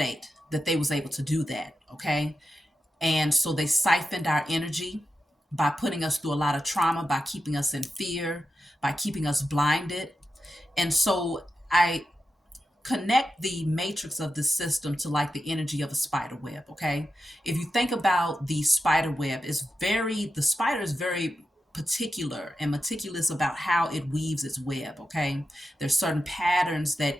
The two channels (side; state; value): both; normal; correlation 0.89